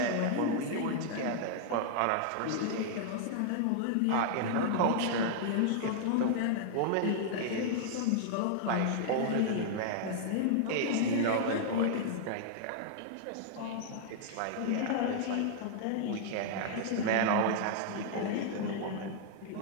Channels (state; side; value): different; both; correlation -0.01